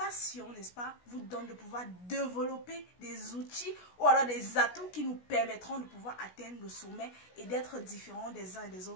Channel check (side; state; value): right; late; 16 ms